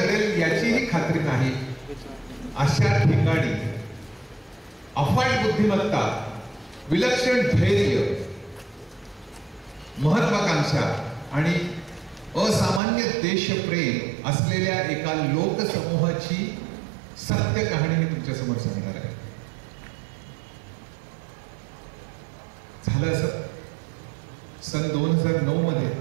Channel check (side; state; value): left; drops out; at 12.8 s